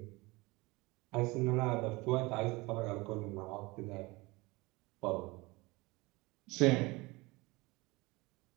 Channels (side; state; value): left; quieter; 23.4 dB